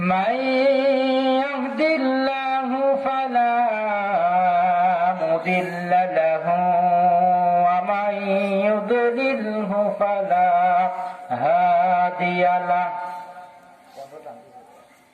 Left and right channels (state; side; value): identical; both; correlation 1.00